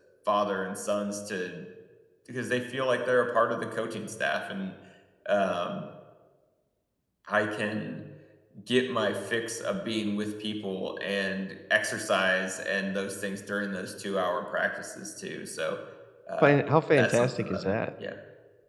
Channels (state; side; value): identical; both; correlation 1.00